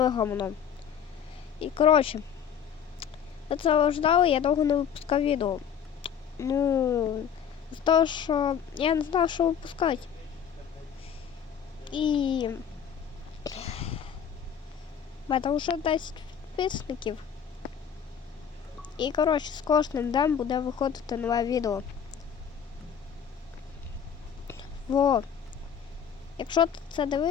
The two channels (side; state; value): right; quieter; 8.0 dB